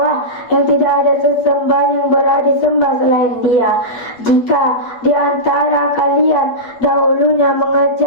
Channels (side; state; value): right; late; 8.5 ms